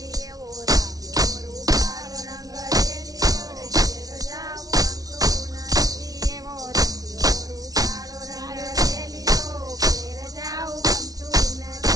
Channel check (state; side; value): late; left; 0.18 ms